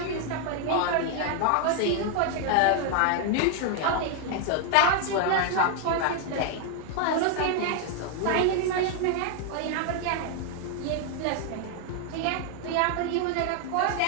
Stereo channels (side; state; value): both; different; correlation 0.00